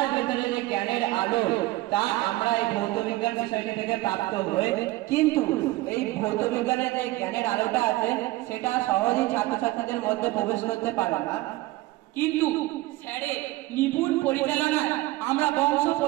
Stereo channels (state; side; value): quieter; left; 18.7 dB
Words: ভেতরে যে জ্ঞানের আলো তা আমরা এই ভৌতবিজ্ঞান বিষয়টি থেকে প্রাপ্ত হই। কিন্তু এই ভৌতবিজ্ঞানের যে জ্ঞানের আলোটা আছে সেটা সহজেই ছাত্রছাত্রীদের মধ্যে প্রবেশ করতে পারে না। কিন্তু স্যারের নিপুণ পরিচালনায় আমরা বংশ